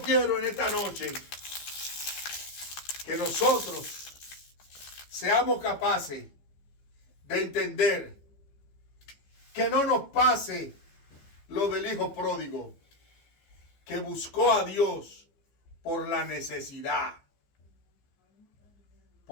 en esta noche que nosotros seamos capaces de entender que no nos pase lo del hijo pródigo, que buscó a Dios por la necesidad,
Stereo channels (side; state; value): right; late; 15 ms